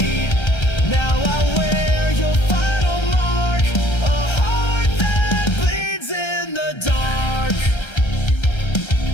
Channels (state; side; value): late; right; 1.3 ms